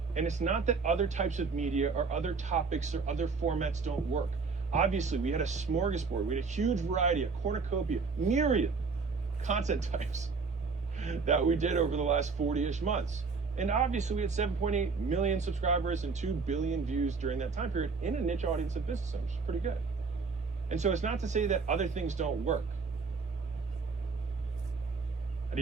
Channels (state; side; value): quieter; left; 4.7 dB